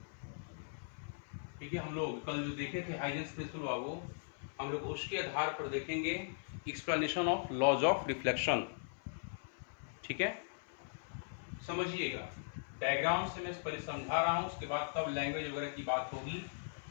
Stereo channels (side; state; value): right; silent; 52 dB below the other